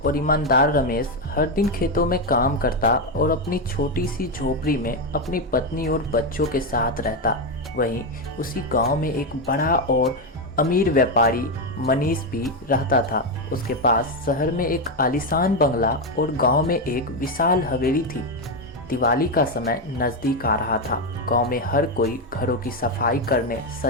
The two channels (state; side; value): normal; both; correlation 0.08